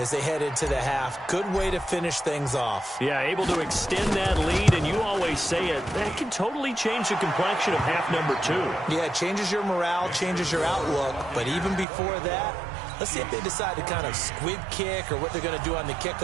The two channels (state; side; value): drops out; left; at 11.9 s